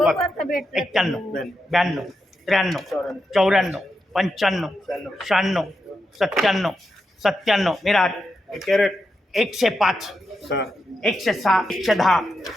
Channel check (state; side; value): normal; both; correlation 0.87